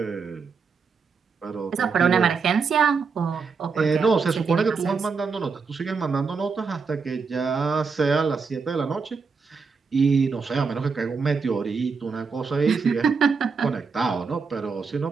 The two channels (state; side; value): quieter; left; 5.2 dB